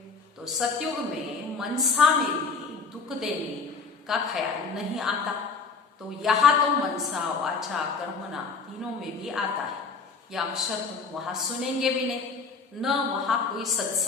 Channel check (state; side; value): quieter; right; 4.7 dB